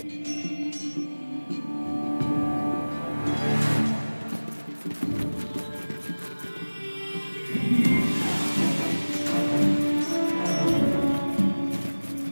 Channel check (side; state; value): both; inverted; correlation -1.00